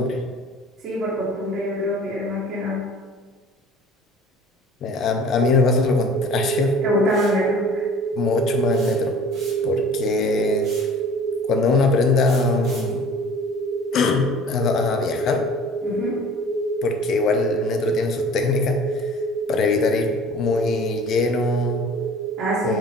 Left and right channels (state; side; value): normal; both; correlation 0.46